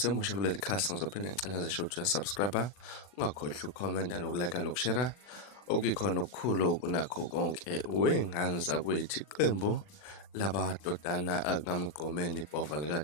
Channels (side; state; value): right; late; 40 ms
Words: kuleli khasi ngizophinde ngicela nje ukuthi uyasubscribe ungakhohlwa ukukhomenta nokulike nokushare okuyikhona okukhulu kunakho konke wey'ngane zakwethu. Iqembu lamadodana akamgqomeni ibhova